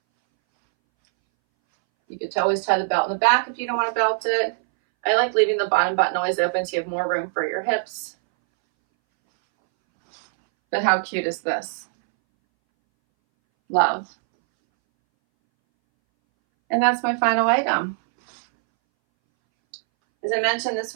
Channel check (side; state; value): left; silent; 62 dB below the other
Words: You could always tie the belt in the back if you don't want to belt it. I like leaving the bottom button always open so you have more room for your hips. But how cute is this? Love. And that's my final item. As I mentioned, this